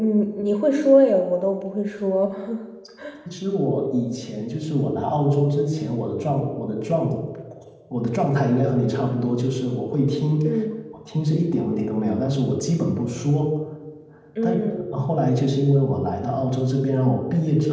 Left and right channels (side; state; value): both; identical; correlation 1.00